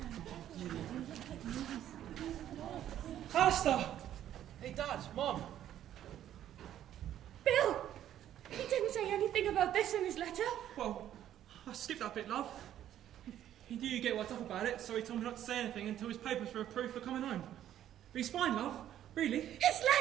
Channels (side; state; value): left; quieter; 11.4 dB